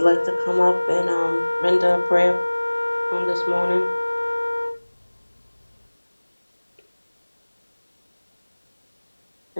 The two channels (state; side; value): inverted; both; correlation -1.00